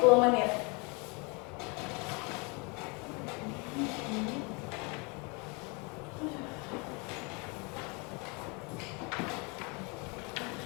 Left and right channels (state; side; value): quieter; right; 30.8 dB